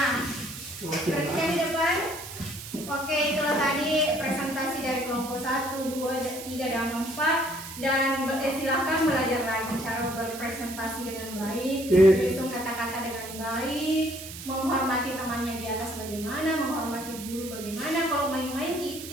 perhatikan di depan. Oke, itulah tadi presentasi dari kelompok 1, 2, 3, dan 4. Dan silahkan belajar lagi cara berpresentasi dengan baik, menyusun kata-kata dengan baik, menghormati temannya di atas bagaimana, menghormati guru bagaimana. Kalau main-main kita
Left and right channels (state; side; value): noise; right; hiss, 11 dB below the sound